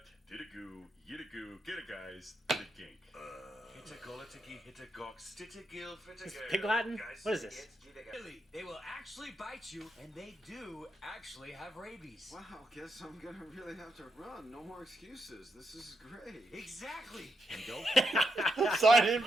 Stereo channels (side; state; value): both; normal; correlation 0.82